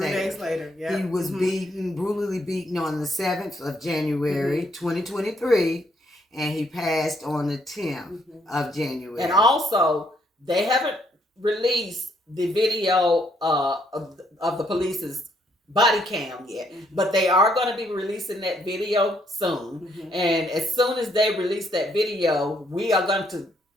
3 days later. Yeah, he was brutally beaten on the 7th of January, 2023. And he passed on the 10th of January. And also, they haven't released the video of the police's body cam yet, but they are going to be releasing that video soon. And as soon as they release that video, we are going to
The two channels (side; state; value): both; normal; correlation 0.71